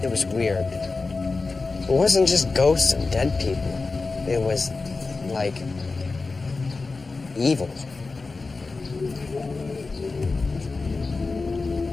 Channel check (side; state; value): right; quieter; 3.9 dB